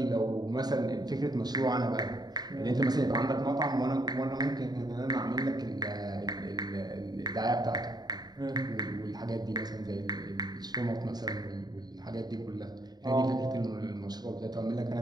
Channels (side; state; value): left; late; 0.20 ms